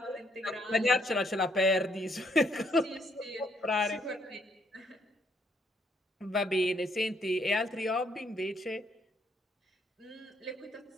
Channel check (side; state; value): both; normal; correlation 0.70